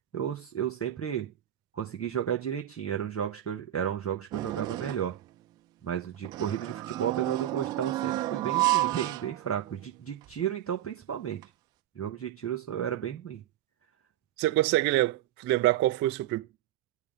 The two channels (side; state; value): left; quieter; 12.1 dB